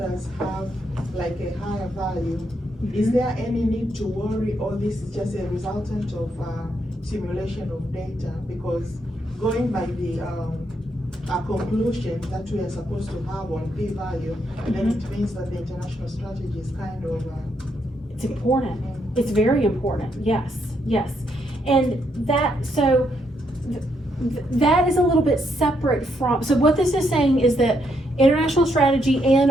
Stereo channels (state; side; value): normal; both; correlation 0.77